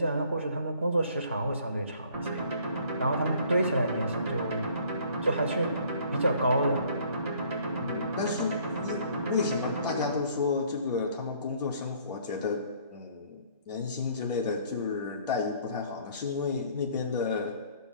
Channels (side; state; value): both; inverted; correlation -0.58